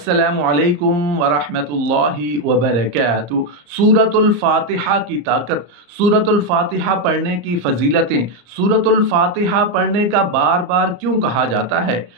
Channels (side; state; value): left; late; 34 ms